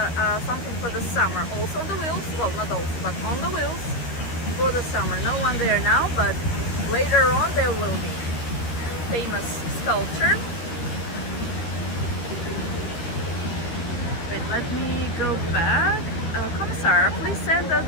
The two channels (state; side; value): late; right; 13 ms